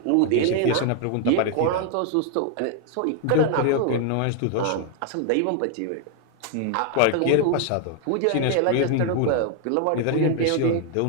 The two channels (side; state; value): both; different; correlation 0.00